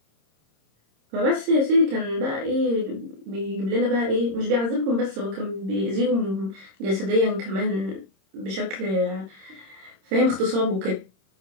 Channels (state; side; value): late; left; 26 ms